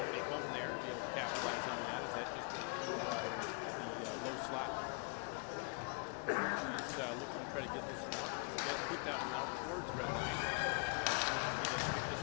home there to be able to capitalize on that, as that just went through the low slot. Berg, she's looking to try to get this one out. Does put that one out towards red line, as Selensky does pick this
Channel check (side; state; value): right; quieter; 39.2 dB